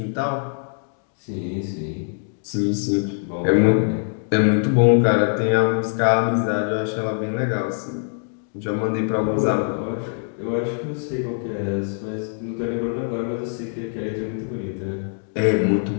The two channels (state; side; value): silent; right; digital silence